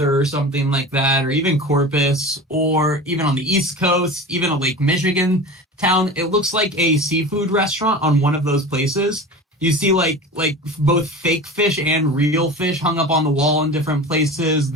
or something like that, or even Corpus, or even on the East Coast, even a Lake Michigan town. It looks like a seafood restaurant on one of those places. You see like both fake fish and real fish hung up on the wall in different places.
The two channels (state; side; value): normal; both; correlation 0.33